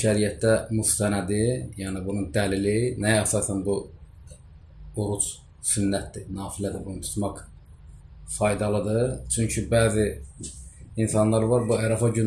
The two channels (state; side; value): identical; both; correlation 1.00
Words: müstənədi, yəni bunun dəlili, nəyə əsasən bu oruc sünnətdir, nafilədir, bunu tutmaq faydalıdır. Çünki bəzi insanlar var, bu Arafa